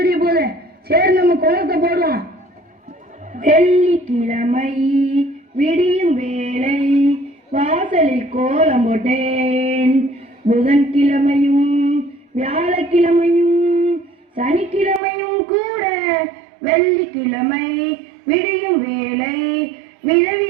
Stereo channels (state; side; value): drops out; left; at 15.0 s